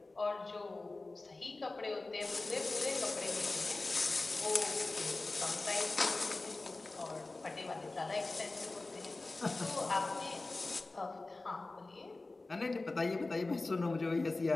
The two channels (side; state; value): right; quieter; 3.2 dB